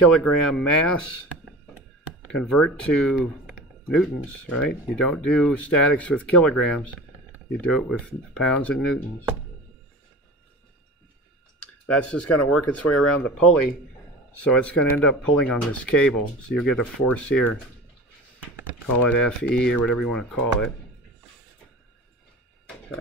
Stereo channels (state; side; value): normal; both; correlation 0.35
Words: mass. Convert to newtons, right? You don't do statics with kilograms. You do it with pounds and newtons. That's just going to work its way around the pulley. So it's going to end up pulling on this cable. So you'll get a force here. Call it FE or whatever you want to call it.